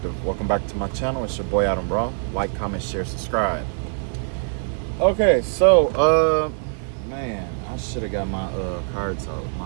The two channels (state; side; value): silent; left; digital silence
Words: Welcome back to my channel. It's your boy Adam Raw. Like, comment, share, subscribe. Okay, so man, I should have got my cards out,